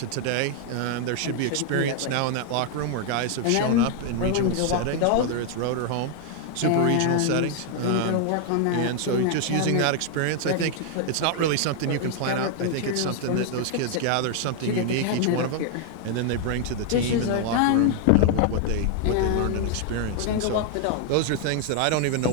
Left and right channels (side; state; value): both; different; correlation 0.00